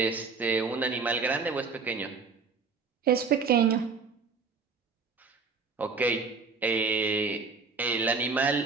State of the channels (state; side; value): quieter; left; 4.8 dB